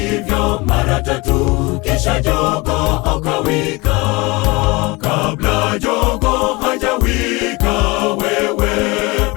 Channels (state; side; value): quieter; right; 24.5 dB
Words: mara tatu, kisha jogoo akawika. Kabla jogoo hajawika wewe